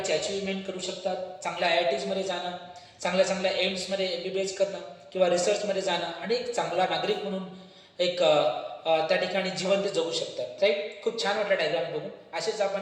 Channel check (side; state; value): both; identical; correlation 1.00